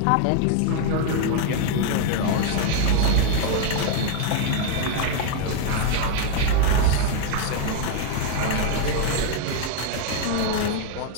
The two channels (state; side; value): different; both; correlation 0.00